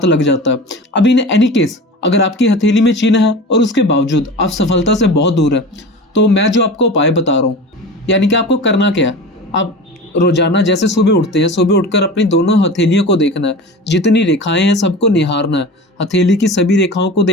लग जाता है। अब इन एनी केस, अगर आपकी हथेली में चिन्ह है और उसके बावजूद आप सफलता से बहुत दूर है, तो मैं जो आपको उपाय बता रहा हूँ, यानी कि आपको करना क्या है, आप रोजाना जैसे सुबह उठते हैं, सुबह उठकर अपनी दोनों हथेलियों को देखना है, जितनी रेखाएं हैं सबको निहारना है, हथेली की सभी रेखाओं को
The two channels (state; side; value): normal; both; correlation 0.33